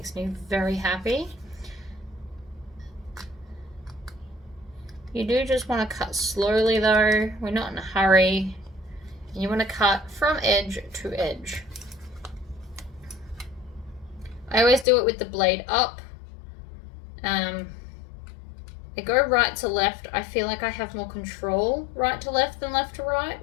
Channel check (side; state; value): right; drops out; at 14.9 s